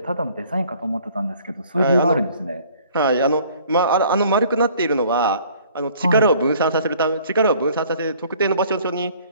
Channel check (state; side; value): inverted; both; correlation -0.55